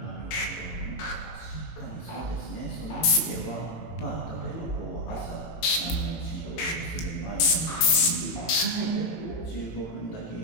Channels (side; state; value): right; late; 18 ms